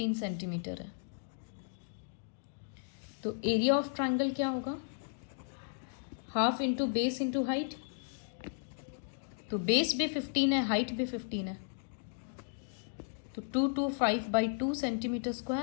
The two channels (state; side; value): silent; right; digital silence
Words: सेंटीमीटर है. तो एरिया ऑफ ट्रायंगल क्या होगा, half into base into height. तो बेस भी 15 है, हाइट भी 15 है, तो 225/2 सेंटीमीटर